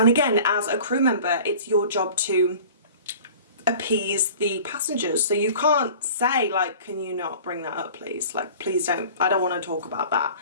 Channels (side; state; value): both; inverted; correlation -0.43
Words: again, as a crew member, it's your job to appease the passengers. So you can't say like, can you not bring that up, please? Like, please don't, I don't want to talk about that.